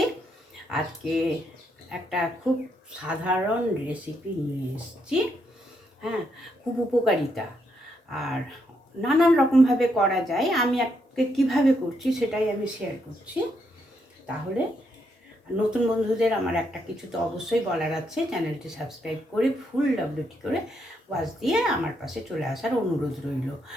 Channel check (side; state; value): both; normal; correlation 0.77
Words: আজকে একটা খুব সাধারণ রেসিপি নিয়ে এসেছি। হ্যাঁ, খুব উপকারিতা আর নানান রকমভাবে করা যায়। আমি আজকে কীভাবে করছি সেটাই আমি শেয়ার করছি। তাহলে নতুন বন্ধুদের আমার একটা কিছু তো অবশ্যই বলার আছে, চ্যানেলটি সাবস্ক্রাইব করে ফুল ডব্লিউটি করে ওয়াচ দিয়ে আমার পাশে চলে আসার অনুরোধ রইল।